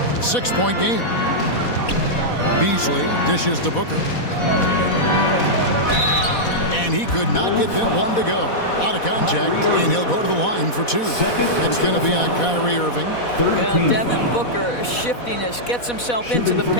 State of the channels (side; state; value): right; late; 4.1 ms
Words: 6-point game. Beasley dishes to Booker. And he could not get them one to go. Out of contact, and he'll go to the line for 2. It's going to be on Kyrie Irving. Well, Devin Booker, shiftiness, gets himself into the